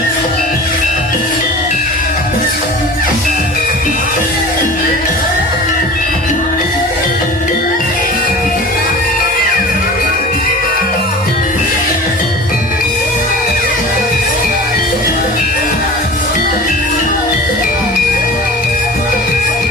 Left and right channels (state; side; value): normal; both; correlation 0.38